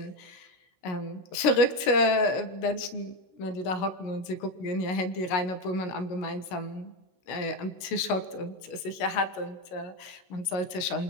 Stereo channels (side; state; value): right; late; 16 ms